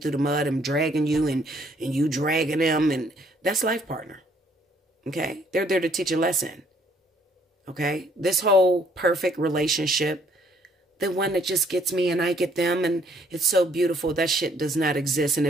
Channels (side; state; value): both; normal; correlation 0.65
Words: the mud and dragging you, and you dragging them, and that's life partner. Okay? They're there to teach a lesson. Okay? This whole perfect relationship, the one that just gets me and I get them and it's so beautiful, that shit does not exist. And